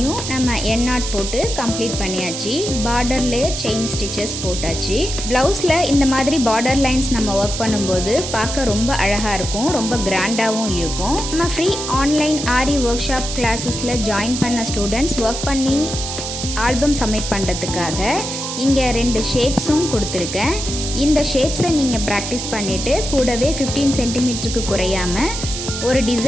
நம்ம என் நாட் போட்டு கம்ப்ளீட் பண்ணியாச்சு. பார்டர்லேயே செயின் ஸ்டிச்சஸ் போட்டாச்சு. ப்ளவுஸில் இந்த மாதிரி பார்டர் லைன்ஸ் நம்ம ஒர்க் பண்ணும்போது பார்க்க ரொம்ப அழகாக இருக்கும், ரொம்ப கிராண்டாகவும் இருக்கும். நம்ம free online aari work shop கிளாஸஸில் join பண்ண ஸ்டூடெண்ட்ஸ் ஒர்க் பண்ணி ஆல்பம் சப்மிட் பண்ணுறதுக்காக இங்கே 2 ஷேப்ஸும் கொடுத்துருக்கேன். இந்த ஷேப்ஸை நீங்கள் ப்ராக்டிஸ் பண்ணிவிட்டு கூடவே 15 சென்டிமீட்டருக்கு குறையாமல் ஒரு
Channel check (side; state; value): right; noise; hiss, 5 dB below the sound